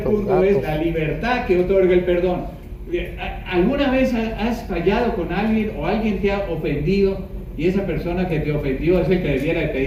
punto es la libertad que otorga el perdón. ¿Alguna vez has fallado con alguien o alguien te ha ofendido? Y esa persona que te ofendió es el que debiera de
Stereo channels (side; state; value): both; identical; correlation 1.00